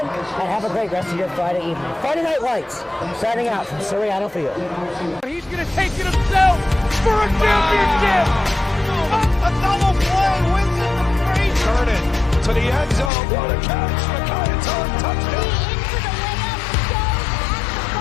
and have a great rest of your Friday evening. Friday Night Lights, signing out from Soriano Field. He's going to take it himself for a championship. A double play wins it for Frazier. Turn it to the end zone. What a catch. McKay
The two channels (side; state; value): right; drops out; at 13.1 s